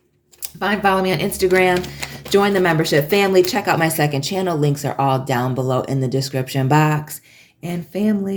Follow me on Instagram. Join the membership family. Check out my second channel. Links are all down below in the description box. And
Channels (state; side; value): identical; both; correlation 1.00